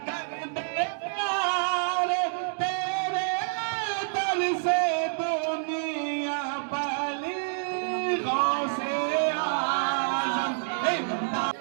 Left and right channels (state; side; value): silent; left; digital silence